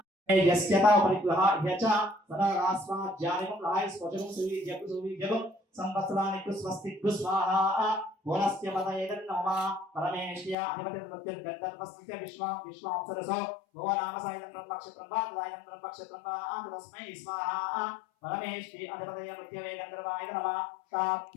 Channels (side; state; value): right; drops out; at 10.6 s